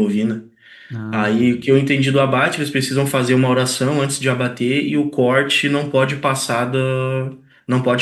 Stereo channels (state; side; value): identical; both; correlation 1.00